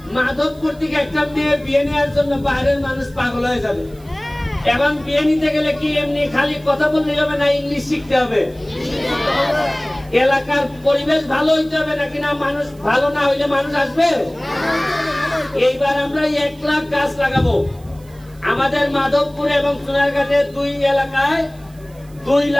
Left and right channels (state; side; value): noise; right; hiss, 28 dB below the sound